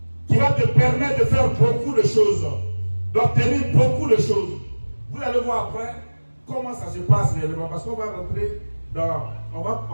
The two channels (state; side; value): inverted; both; correlation -1.00